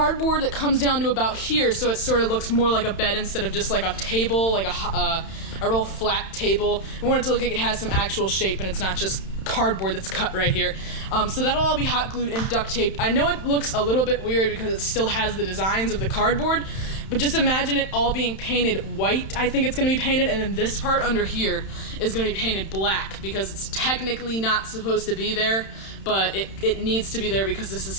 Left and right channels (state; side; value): late; right; 31 ms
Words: that comes down to about here, so it sort of looks more like a bed instead of just like a table, like a real flat table. We want it to look like it has some actual shape and it's not just cardboard that's cut right here. So that'll all be hot glued and duct taped. I know it looks a little bit weird because it still has the designs of the cardboard, but just imagine it all being painted white. I think it's going to be painted, and then this part under here is going to be painted black because it's technically not supposed to be there, but it needs to be there because this is